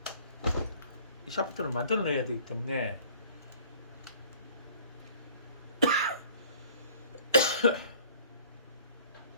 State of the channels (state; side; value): inverted; both; correlation -0.53